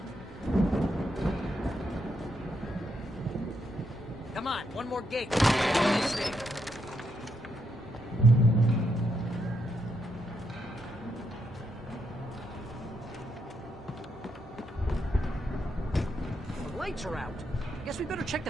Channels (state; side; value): normal; both; correlation 0.79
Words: Come on, one more gate. This thing. The lights are out. Guess we better check